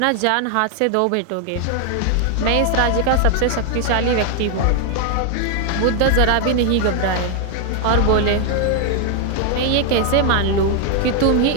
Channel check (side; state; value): both; different; correlation 0.00